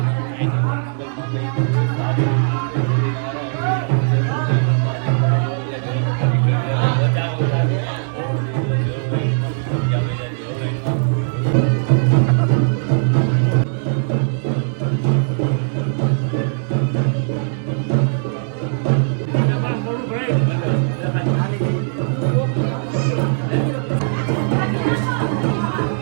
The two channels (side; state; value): left; silent; 62 dB below the other